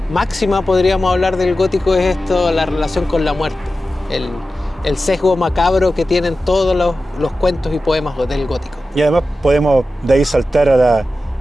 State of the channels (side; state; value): both; normal; correlation 0.93